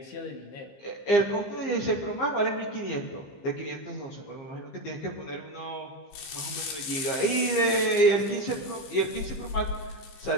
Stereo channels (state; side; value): late; right; 15 ms